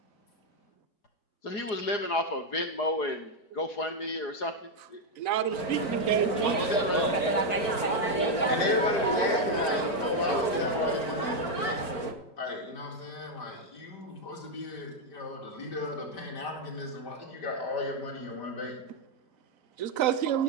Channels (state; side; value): late; right; 4.4 ms